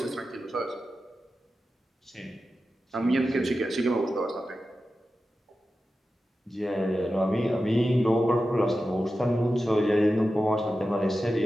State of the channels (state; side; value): normal; both; correlation 0.92